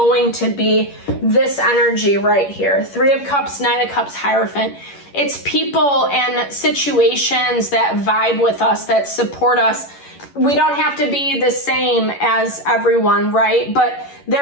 to be this energy right here. 3 of Cups, 9 of Cups, Hierophant. It's people and situations that vibe with us, that support us. We don't have to be the same as everyone, right? But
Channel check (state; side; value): late; right; 11 ms